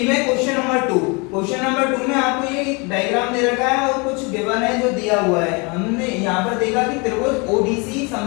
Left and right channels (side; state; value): right; quieter; 29.9 dB